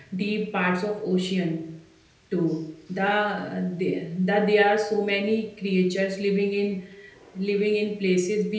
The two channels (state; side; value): identical; both; correlation 1.00